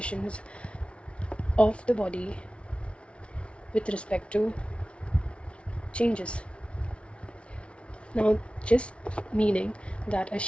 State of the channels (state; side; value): late; right; 0.060 ms